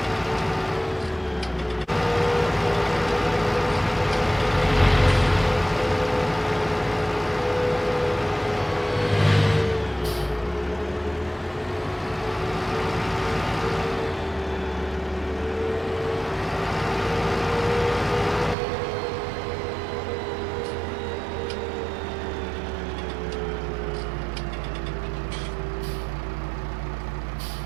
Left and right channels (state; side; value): drops out; left; at 18.6 s